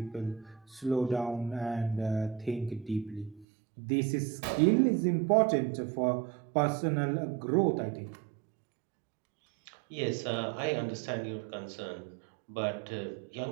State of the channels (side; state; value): left; drops out; at 3.5 s